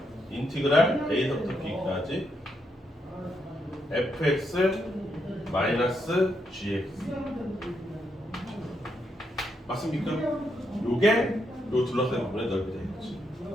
인티그랄 A서부터 B까지 fx 마이너스 gx. 맞습니까? 요게 요 둘러싸인 부분의 넓이 되겠지.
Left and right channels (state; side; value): normal; both; correlation 0.80